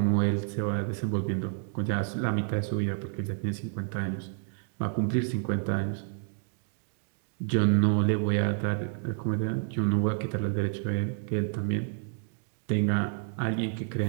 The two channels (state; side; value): silent; left; 58 dB below the other